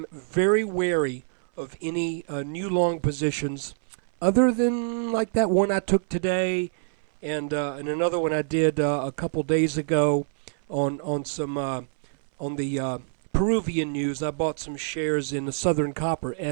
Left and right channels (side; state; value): left; silent; 60 dB below the other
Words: very wary of any new long positions other than like that one I took today and another one I did a couple days ago on some on the Peruvian news. I bought some shares in the Southern Copper,